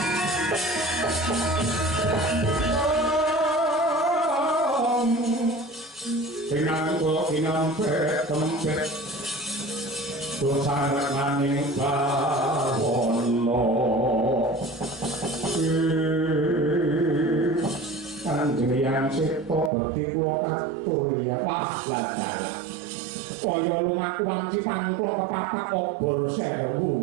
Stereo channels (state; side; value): drops out; left; at 19.7 s